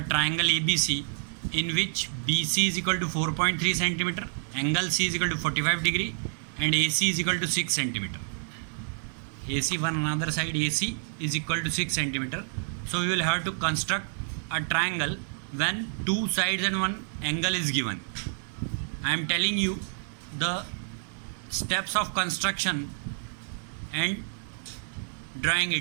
triangle ABC in which BC is equal to 4.3 centimeter, angle C is equal to 45 degree and AC is equal to 6 centimeter. AC one another side AC is equal to 6 centimeter. So we will have to construct a triangle when two sides and one angle is given. I am telling you the steps of construction and drawing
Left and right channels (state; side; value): silent; left; digital silence